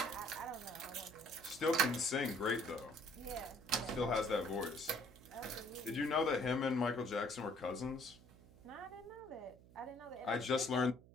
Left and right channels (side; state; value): right; noise; hum, 22 dB below the sound